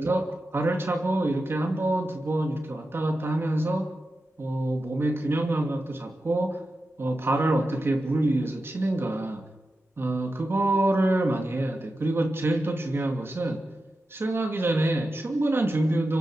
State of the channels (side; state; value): both; normal; correlation 0.91